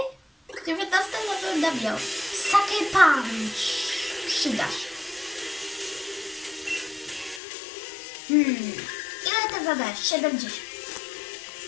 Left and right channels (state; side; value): drops out; right; at 7.4 s